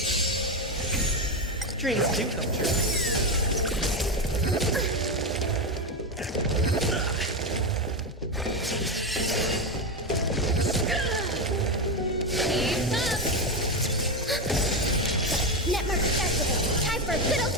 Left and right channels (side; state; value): both; normal; correlation 0.12